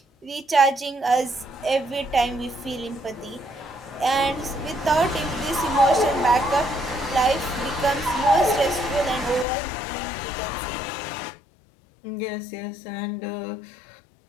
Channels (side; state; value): right; drops out; at 9.5 s